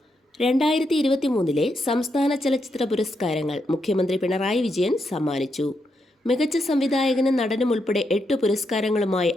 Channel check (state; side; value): normal; both; correlation 0.82